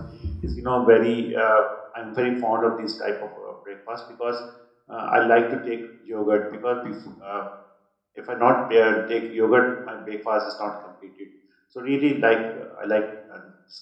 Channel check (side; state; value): both; identical; correlation 1.00